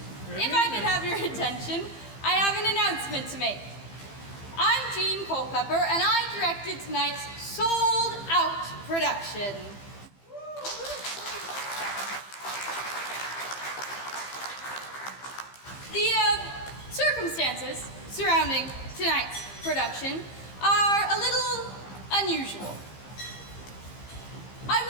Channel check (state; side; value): late; right; 15 ms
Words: if I could have your attention, I have an announcement to make. I'm Jean Culpepper, and I directed tonight's sold-out production. The circumstances surrounding tonight's production are a little unusual. I